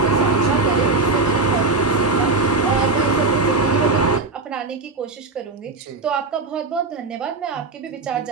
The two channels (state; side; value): quieter; left; 3.7 dB